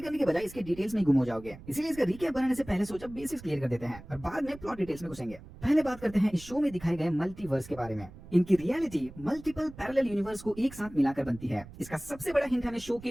करने के बजाय इसके डिटेल्स में गुम हो जाओगे। इसीलिए इसका रिकैप बनाने से पहले सोचा बेसिक्स क्लियर कर देते हैं और बाद में प्लॉट डिटेल्स में घुसेंगे। पहले बात करते हैं इस शो में दिखाए गए मल्टीवर्स के बारे में। इनकी रियलिटी मल्टीपल पैरेलल यूनिवर्स को एक साथ मिलाकर बनती है। इसका सबसे बड़ा हिंट हमें शो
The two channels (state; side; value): noise; right; rumble, 18 dB below the sound